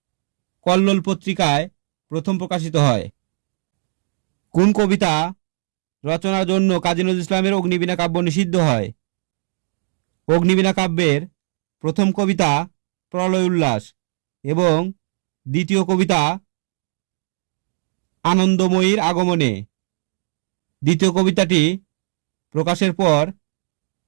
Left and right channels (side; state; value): left; silent; digital silence